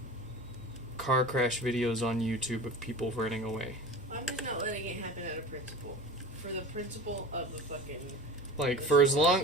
car crash videos on YouTube of people running away. I'm just not letting it happen out of principle. For the principle of the fucking... Like, for as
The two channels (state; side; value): normal; both; correlation 0.35